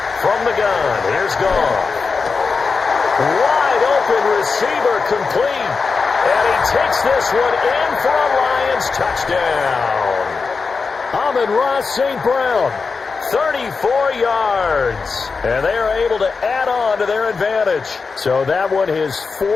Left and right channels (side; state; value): right; quieter; 4.7 dB